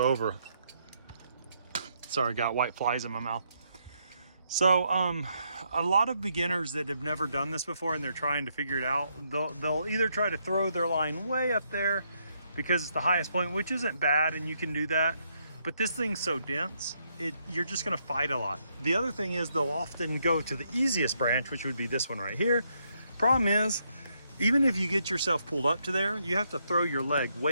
over. Sorry, I got white flies in my mouth. So a lot of beginners that have never done this before and they're trying to figure it out, they'll either try to throw their line way up there because it's the highest point, which isn't bad and you can do that, but this thing's so dense, you're just gonna fight a lot. The other thing is they'll often go to the easiest branch, which would be this one right here. Problem is, even if you get yourself pulled up to there, you have to throw your leg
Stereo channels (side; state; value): both; inverted; correlation -0.76